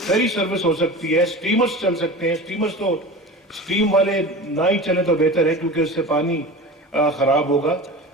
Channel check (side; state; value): both; normal; correlation 0.33